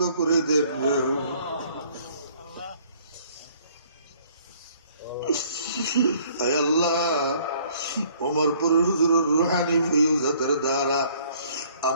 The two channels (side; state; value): both; inverted; correlation -0.59